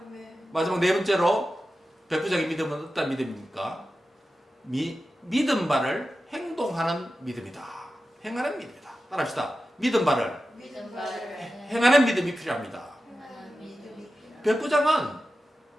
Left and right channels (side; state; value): both; normal; correlation 0.93